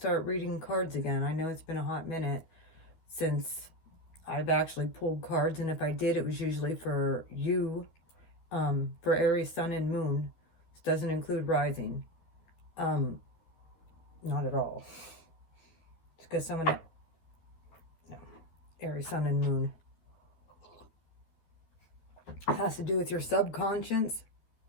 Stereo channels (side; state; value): right; late; 12 ms